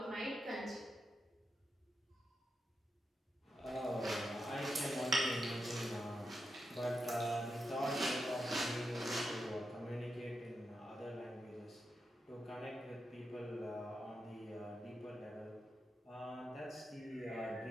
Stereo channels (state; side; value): normal; both; correlation 0.87